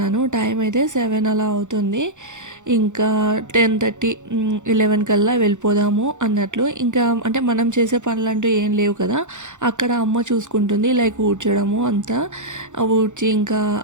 టైం అయితే 7 అలా అవుతుంది. ఇంకా 10:30 11 కల్లా వెళ్ళిపోదాము అన్నట్లు. ఇంకా అంటే మనం చేసే పనులు అంటూ ఏం లేవు కదా. అక్కడ అమ్మ చూసుకుంటుంది లైక్ ఊడ్చడము అంతా ఊడ్చి ఇంకా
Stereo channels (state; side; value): late; left; 0.85 ms